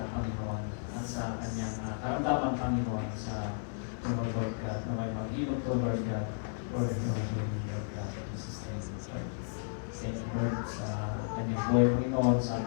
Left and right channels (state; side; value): silent; right; 55 dB below the other